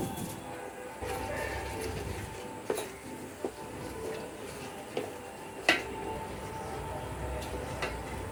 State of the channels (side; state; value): both; identical; correlation 1.00